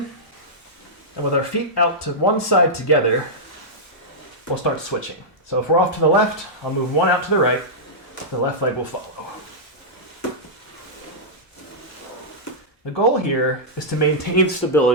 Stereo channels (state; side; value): normal; both; correlation -0.10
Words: and with our feet out to one side together, we'll start switching. So if we're off to the left, I'll move one out to the right, the left leg will follow. The goal here is to maintain